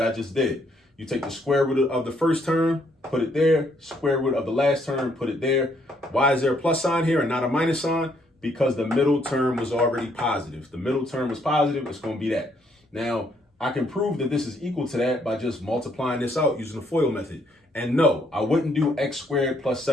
I just did. You take the square root of the first term, put it there. Square root of the last term, put it there. Why is there a plus sign here and not a minus sign? Because the middle term was already positive. If the middle term was positive, it's going to be that. Now, I can prove that this is equal to that by just multiplying this out using the FOIL method. And no, I wouldn't do x squared plus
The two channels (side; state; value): both; normal; correlation 0.70